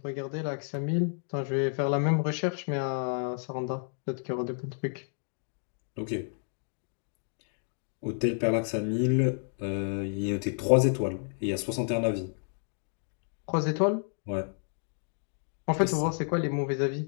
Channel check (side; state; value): right; silent; 57 dB below the other